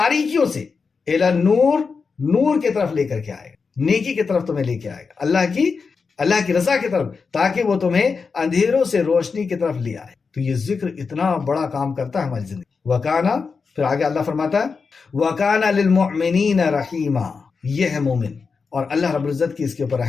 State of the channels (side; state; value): right; quieter; 5.0 dB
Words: سے، الی النور نور کی طرف لے کر کے آئے گا، نیکی کی طرف تمہیں لے کے آئے گا، اللہ کی رضا کی طرف، تاکہ وہ تمہیں اندھیروں سے روشنی کی طرف لے آئے۔ تو یہ ذکر اتنا بڑا کام کرتا ہے ہماری زندگی۔ وکانا، پھر آگے اللہ فرماتا ہے وکانا للمؤمنین رحیما، یہ ہے مومن، اور اللہ رب العزت کی اس کے اوپر